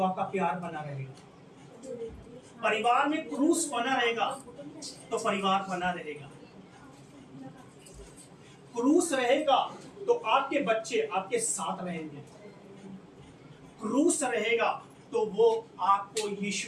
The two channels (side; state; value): both; identical; correlation 1.00